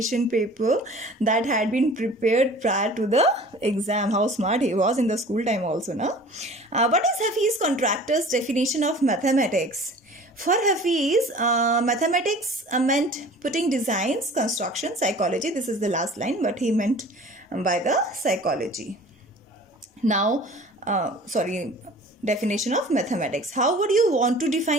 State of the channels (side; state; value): both; normal; correlation 0.45